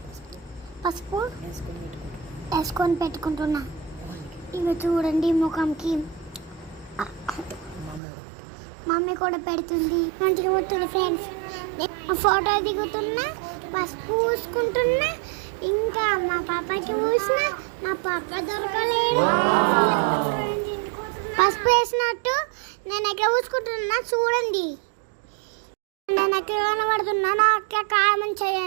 పసుపు వేసుకొని పెట్టుకుంటున్నా. ఇవి చూడండి ముఖంకి మమ్మీ కూడా పెడుతుంది. మంచిగా పోతుంది ఫ్రెండ్స్. ఫోటో దిగుతున్నా, పసుపు పూసుకుంటున్నా, ఇంకా మా పాపకి పూసిన మా పాప దొరకలేదు. పసుపు వేసినట్టు నేను ఎక్కడ పూసుకుంటున్నా చూడండి. నేను ఎక్కడ కనబడుతున్నా నాకు కామెంట్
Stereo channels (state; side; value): drops out; left; at 8.0 s